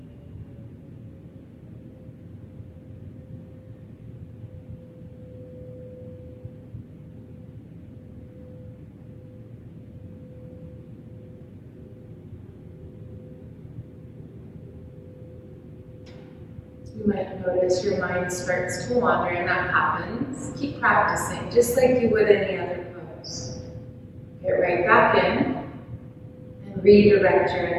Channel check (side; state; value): both; identical; correlation 1.00